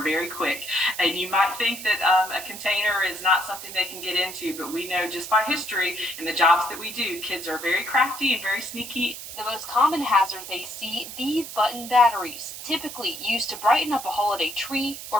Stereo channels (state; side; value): noise; right; hiss, 10 dB below the sound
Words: Very quick. And you might think that a container is not something they can get into, but we know just by history and the jobs that we do, kids are very crafty and very sneaky. The most common hazard they see, these button batteries, typically used to brighten up a holiday tree